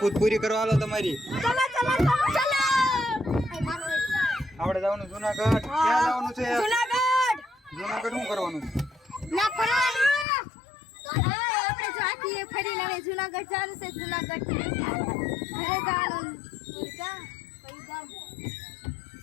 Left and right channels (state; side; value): drops out; right; at 10.2 s